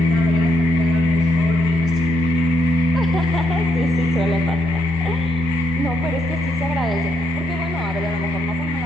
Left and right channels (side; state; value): both; normal; correlation 0.77